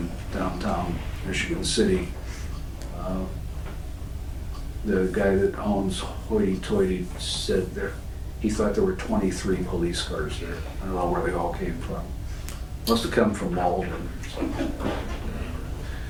downtown Michigan City. The guy that owns Hoity Toity said he thought there were 23 police cars there. I don't know where they all came from. Must have come from Malden or something.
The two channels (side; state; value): both; identical; correlation 1.00